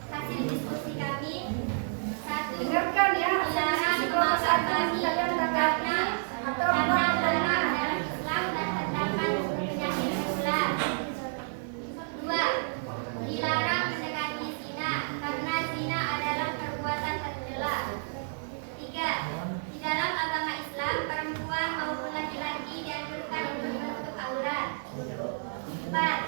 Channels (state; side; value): silent; left; digital silence